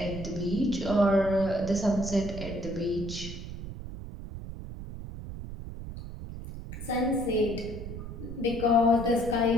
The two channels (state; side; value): noise; right; rumble, 9 dB below the sound